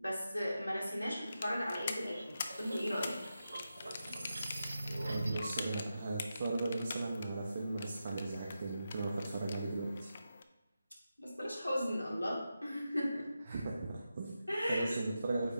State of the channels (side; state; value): both; inverted; correlation -0.89